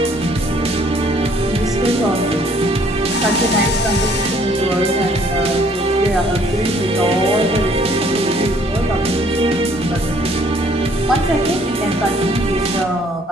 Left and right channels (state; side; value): normal; both; correlation 0.61